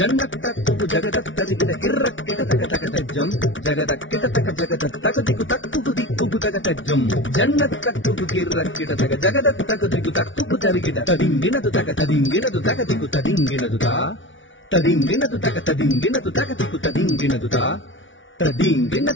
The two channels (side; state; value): right; late; 0.56 ms